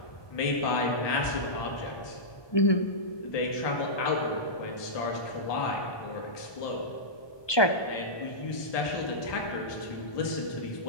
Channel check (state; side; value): late; right; 1.2 ms